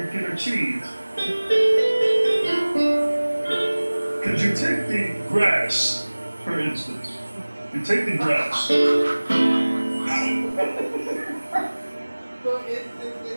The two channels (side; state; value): both; inverted; correlation -1.00